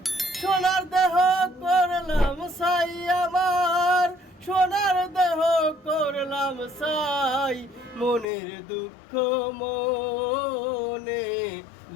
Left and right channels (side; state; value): right; drops out; at 8.2 s